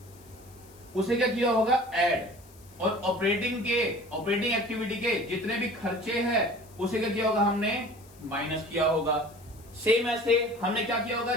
उसे क्या किया होगा, ऐड, और ऑपरेटिंग एक्टिविटी के जितने भी खर्चे हैं उसे क्या किया होगा, हमने माइनस किया होगा। सेम ऐसे हमने क्या किया होगा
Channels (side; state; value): left; noise; hiss, 25 dB below the sound